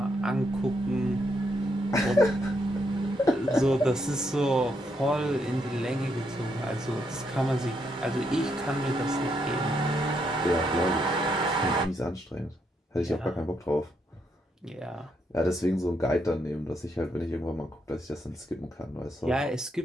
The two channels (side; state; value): both; normal; correlation 0.77